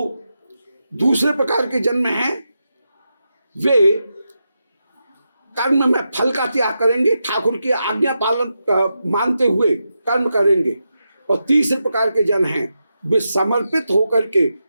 दूसरे प्रकार के जन्म हैं वे कर्म में फल का त्याग करेंगे, ठाकुर की आज्ञा पालन मानते हुए कर्म करेंगे। और तीसरे प्रकार के जन हैं वे समर्पित होकर के,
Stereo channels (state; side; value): inverted; both; correlation -0.88